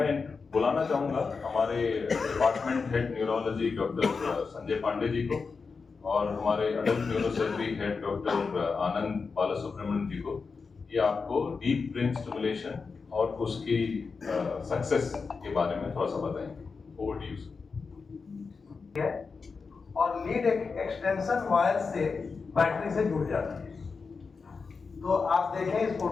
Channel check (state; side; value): quieter; right; 4.8 dB